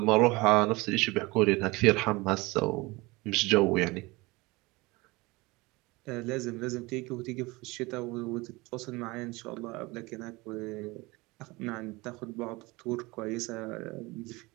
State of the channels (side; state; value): left; quieter; 23.2 dB